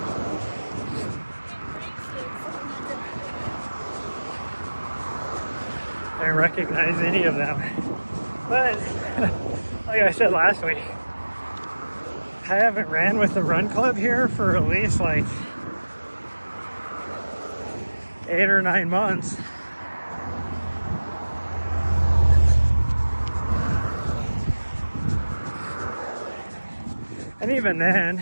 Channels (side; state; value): both; inverted; correlation -1.00